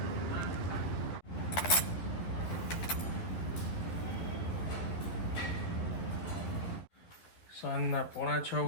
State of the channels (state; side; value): late; right; 12 ms